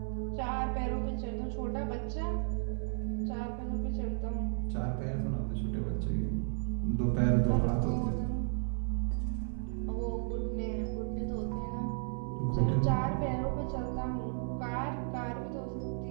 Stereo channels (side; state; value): left; silent; 55 dB below the other